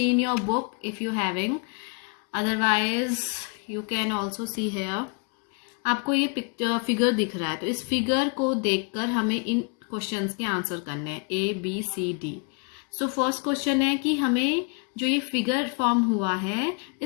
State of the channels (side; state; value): right; quieter; 35.4 dB